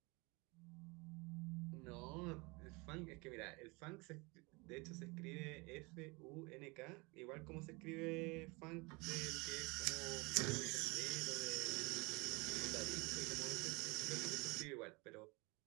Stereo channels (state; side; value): quieter; left; 27.0 dB